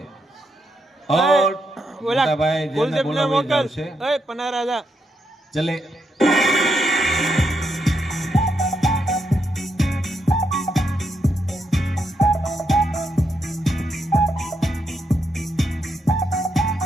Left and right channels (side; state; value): both; normal; correlation 0.80